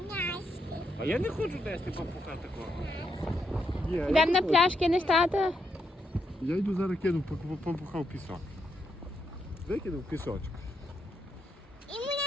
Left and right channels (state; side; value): normal; both; correlation 0.80